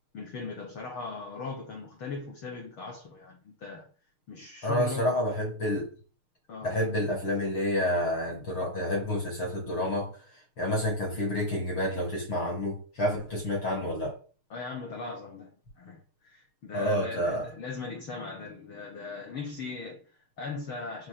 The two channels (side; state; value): right; late; 6.5 ms